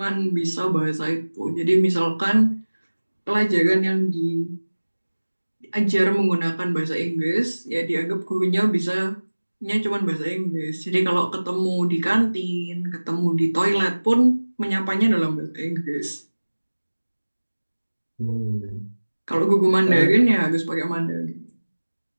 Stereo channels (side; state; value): both; inverted; correlation -1.00